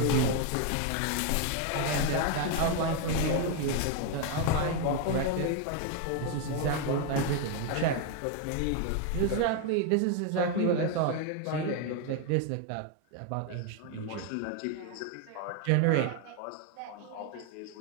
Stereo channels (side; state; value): both; different; correlation 0.01